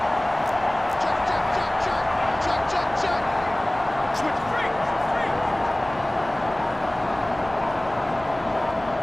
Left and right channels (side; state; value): left; noise; hum, 19 dB below the sound